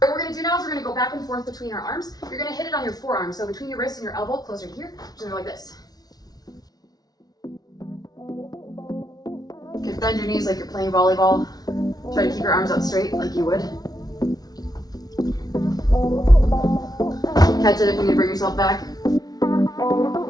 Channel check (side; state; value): right; late; 0.19 ms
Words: we're going to do now is we're going to go back and forth between our arms. You're going to hit it on your forearm, so between your wrist and your elbow, closer to here, just going to go like this. Okay, bend your knees like you're playing volleyball. Try to keep your arms out straight like you would. Catch it if you need to bring yourself back.